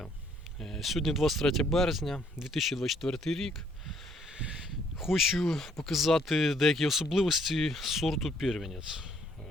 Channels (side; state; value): both; normal; correlation 0.66